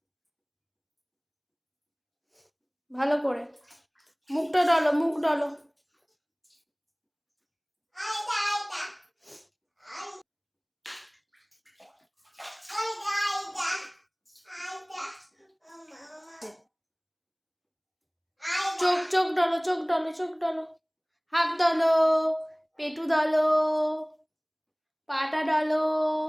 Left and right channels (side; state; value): both; identical; correlation 1.00